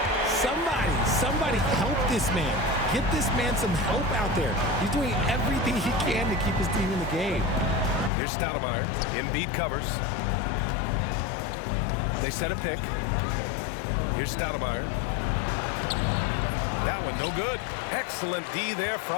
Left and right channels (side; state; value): right; drops out; at 8.1 s